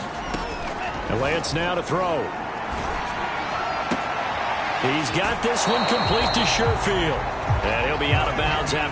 And Lance now to throw. He's got this one complete to Sherfield. And he'll be out of bounds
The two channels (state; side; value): identical; both; correlation 1.00